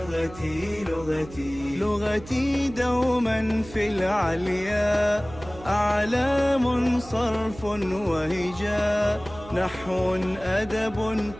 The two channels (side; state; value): right; noise; hum, 17 dB below the sound